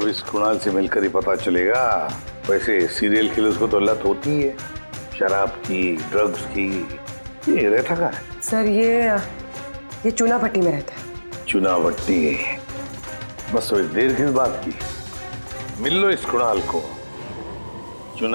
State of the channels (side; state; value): both; inverted; correlation -1.00